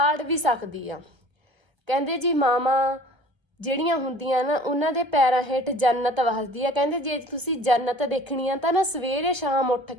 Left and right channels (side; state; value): left; late; 1.3 ms